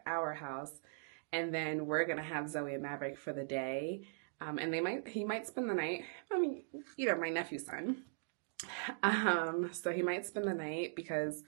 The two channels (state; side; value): silent; left; digital silence